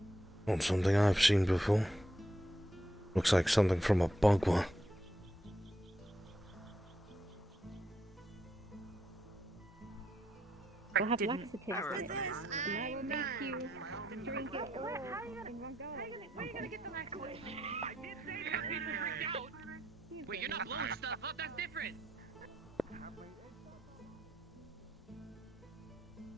Not something I've seen before. Looks like something from a bugwa. We'll have laxatives in it, and that will make you drink it all in one go. Where are you gonna get the laxatives? I did say that people freaked out. Wait, you're not blowing stuff up? That's different.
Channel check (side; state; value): both; normal; correlation 0.79